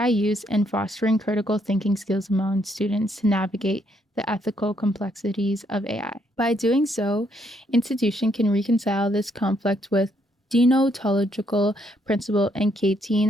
use and fostering critical thinking skills among students to navigate the ethical complexities of AI. By doing so, institution can reconcile this conflict with deontological principle and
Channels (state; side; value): normal; both; correlation 0.73